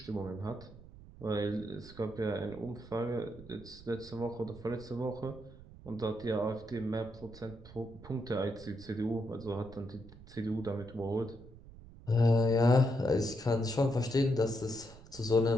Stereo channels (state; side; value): noise; right; rumble, 18 dB below the sound